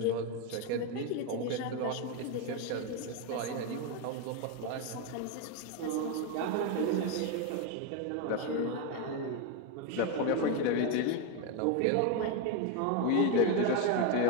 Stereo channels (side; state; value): both; different; correlation 0.02